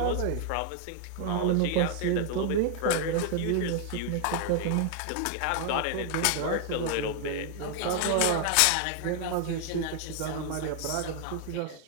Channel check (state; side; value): different; both; correlation 0.00